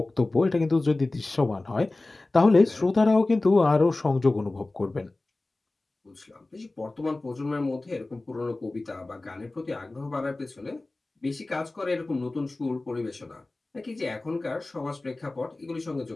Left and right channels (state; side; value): quieter; right; 3.0 dB